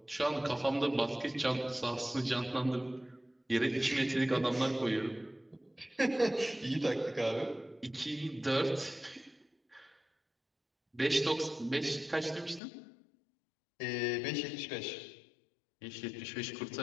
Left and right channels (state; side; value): drops out; right; at 12.6 s